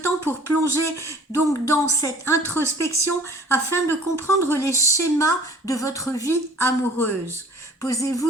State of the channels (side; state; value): both; normal; correlation 0.50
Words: pour plonger donc dans cette introspection afin de comprendre les schémas de votre vie amoureuse. Posez-vous